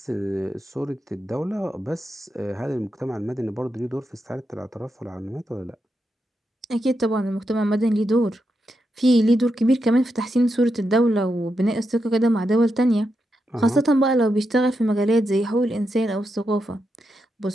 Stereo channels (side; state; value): both; normal; correlation 0.85